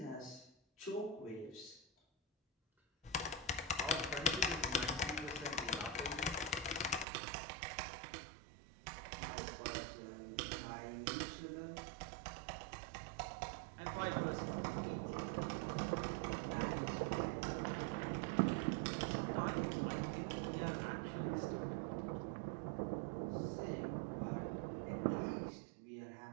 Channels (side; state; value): left; drops out; at 7.1 s